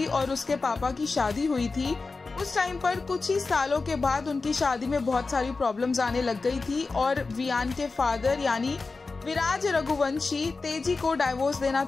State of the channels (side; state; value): right; quieter; 4.0 dB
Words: और उसके पापा की शादी हुई थी उस टाइम पर कुछ ही सालों के बाद उनकी शादी में बहुत सारी प्रॉब्लम्स आने लग गई थी और वियान के फादर यानी विराज रघुवंशी तेजी को डाइवोर्स देना